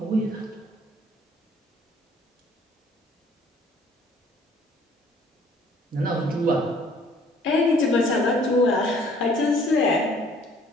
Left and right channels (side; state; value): both; normal; correlation 0.58